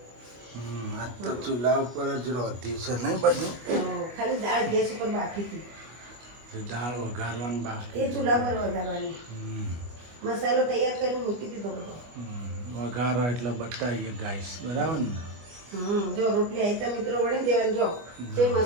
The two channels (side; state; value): left; late; 25 ms